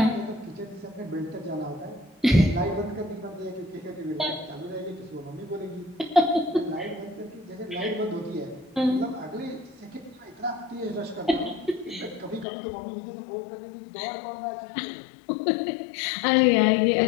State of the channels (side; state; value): right; drops out; at 12.5 s